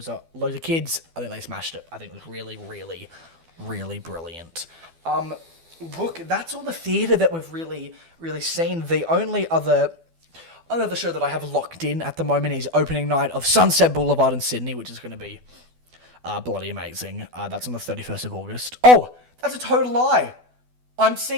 loads of kids. I think they smashed it. I think it was really, really, really brilliant. Look, that's all the theatre that we've really, really seen. The only other show that I have locked in at the moment is opening night of Sunset Boulevard in Sydney, which is going to be bloody amazing. That's on the 31st of August. Oh, that's a total lie. I'm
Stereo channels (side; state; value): left; late; 12 ms